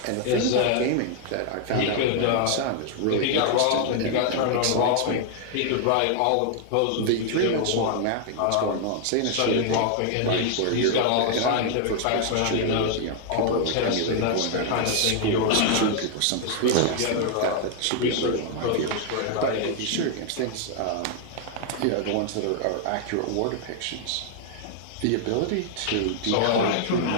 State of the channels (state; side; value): different; both; correlation 0.00